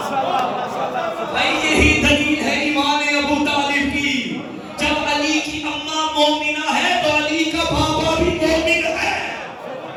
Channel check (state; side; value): identical; both; correlation 1.00